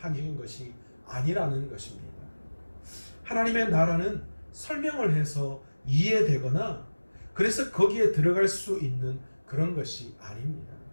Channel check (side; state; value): both; inverted; correlation -1.00